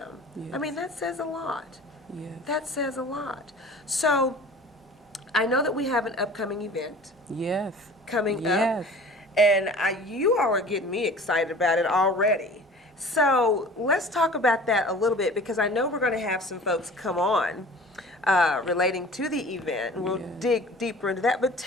I mean, that says a lot. Yes. That says a lot. So I know that we have an upcoming event Yes. coming Yes. up, and you all are getting me excited about it already. So let's talk about that a little bit, because I know we're going to have some folks come on relating to the event, and we'll dig deeper into that. But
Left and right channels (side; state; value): both; normal; correlation 0.44